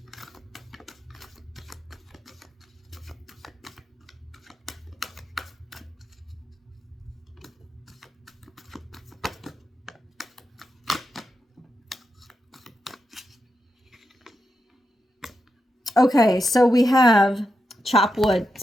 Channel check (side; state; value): both; normal; correlation 0.86